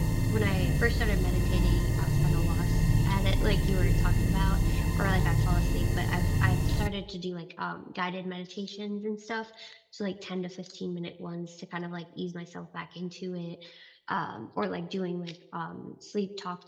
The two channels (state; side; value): identical; both; correlation 1.00